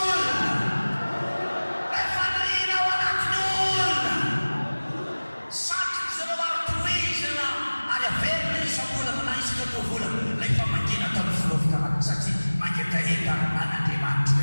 Le faniriana ao anatin'olona. Satroky zareo aritoizana ary averina isam-bolana na isaka tao volana. Ilay famangina tamin'ny filovikamana satria mangetaheta an'Andriamanitra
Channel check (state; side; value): inverted; both; correlation -1.00